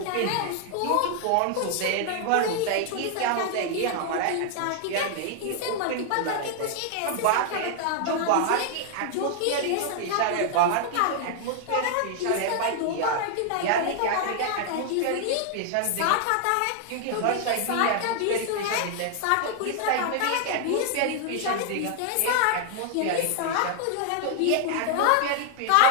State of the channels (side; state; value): both; different; correlation 0.00